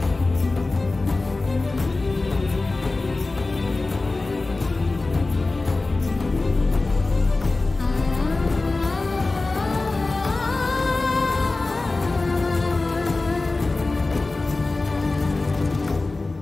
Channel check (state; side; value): quieter; right; 3.3 dB